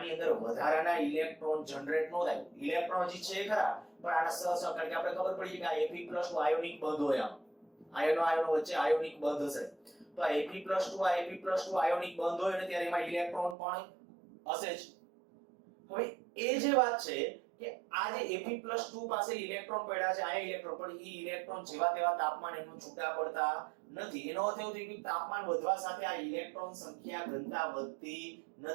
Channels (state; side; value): drops out; left; at 13.6 s